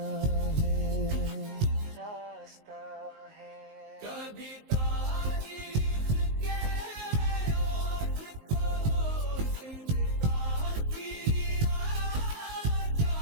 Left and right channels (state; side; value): late; left; 19 ms